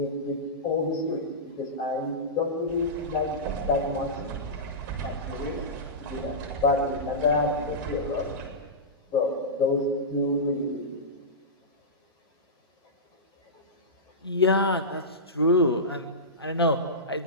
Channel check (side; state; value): both; normal; correlation -0.16